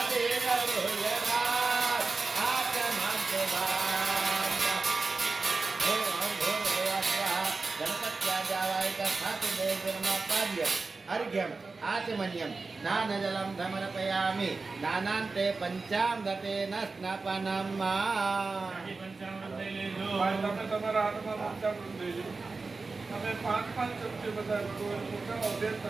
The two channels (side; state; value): left; quieter; 4.0 dB